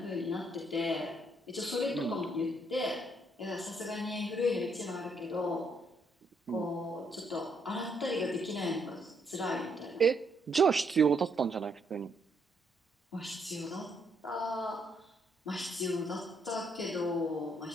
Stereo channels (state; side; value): normal; both; correlation 0.73